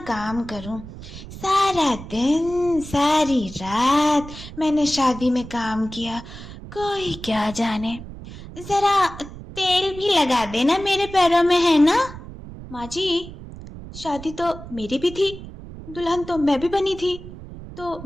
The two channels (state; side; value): noise; right; rumble, 14 dB below the sound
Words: काम करूं, सारा दिन सारी रात मैंने शादी में काम किया, कोई क्या जाने। जरा तेल भी लगा देना मेरे पैरों में, है ना। माँ जी, शादी तो मेरी भी थी, दुल्हन तो मैं भी बनी थी, तो